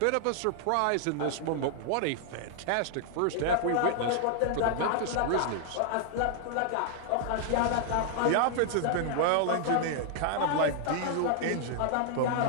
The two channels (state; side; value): different; both; correlation 0.00